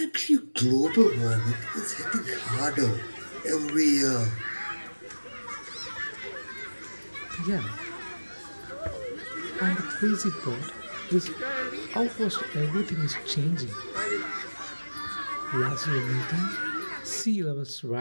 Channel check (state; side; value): inverted; both; correlation -1.00